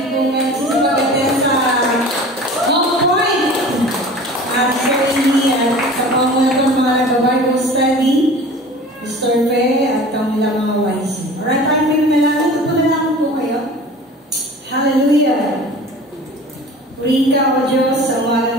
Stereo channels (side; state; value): both; normal; correlation 0.41